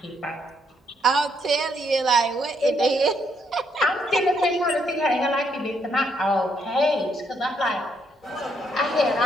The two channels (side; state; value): both; normal; correlation 0.74